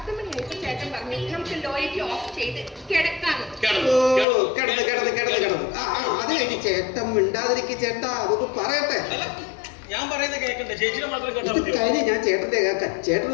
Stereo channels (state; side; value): drops out; right; at 4.2 s